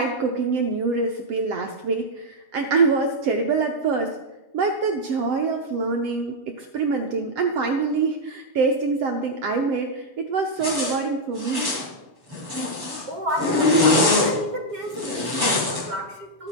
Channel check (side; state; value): left; late; 7.0 ms